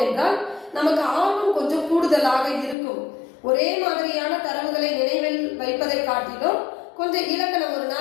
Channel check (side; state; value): right; drops out; at 2.8 s